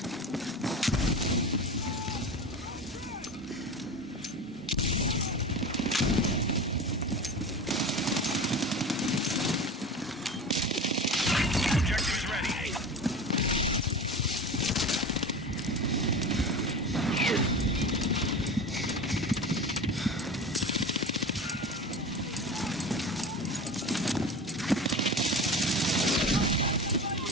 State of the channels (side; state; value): both; normal; correlation 0.31